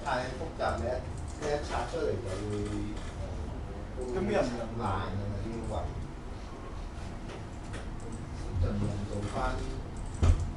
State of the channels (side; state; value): both; identical; correlation 1.00